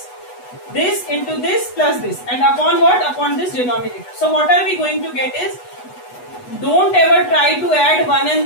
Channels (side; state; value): right; late; 8.1 ms